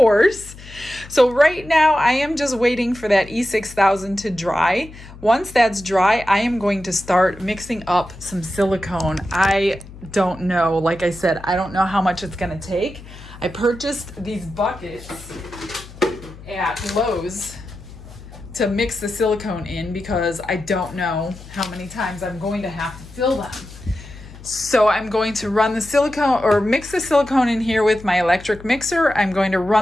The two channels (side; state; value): left; noise; hum, 17 dB below the sound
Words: So right now I am just waiting for that E6000 to dry. Once that's dry, I am going to start mixing up some silicone. I don't know, like I said, I don't know how much it's gonna take. I purchased these buckets at Lowe's to mix the silicone in because I don't know how many times I'm going to have to fill them. So I'm going to run the silicone or mix the silicone in here with my electric mixer. I'm going to